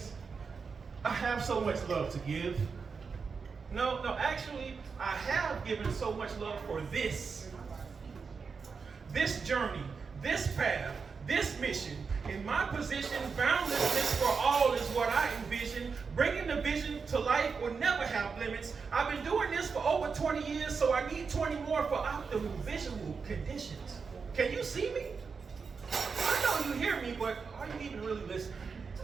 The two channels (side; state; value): left; quieter; 5.3 dB